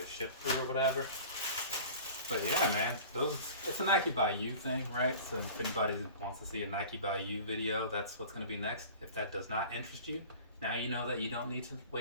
shipped through or whatever. But yeah, man, it's a Nike by You thing, right? So if anybody wants to see a Nike by You video, that's what's going to be next. If that does not interest you, now you know that you don't need to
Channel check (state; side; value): inverted; both; correlation -0.40